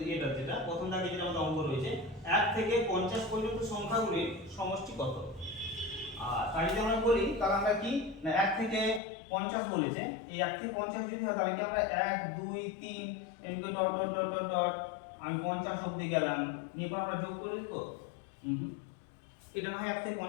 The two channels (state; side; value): drops out; right; at 9.0 s